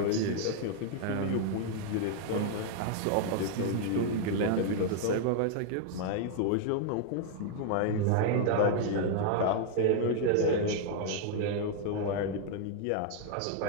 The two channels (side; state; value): both; different; correlation 0.00